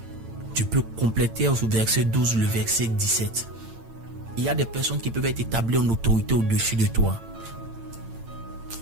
Tu peux compléter au verset 12 le verset 17. Il y a des personnes qui peuvent être établies en autorité au-dessus de toi.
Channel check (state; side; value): late; left; 8.9 ms